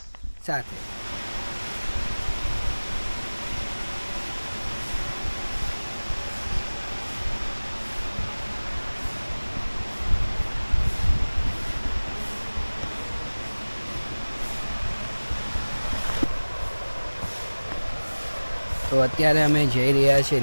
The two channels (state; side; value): inverted; both; correlation -1.00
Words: સાથે। તો અત્યારે અમે જઈ રહ્યા છીએ